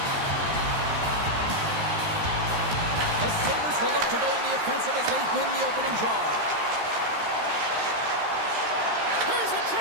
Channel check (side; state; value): left; late; 13 ms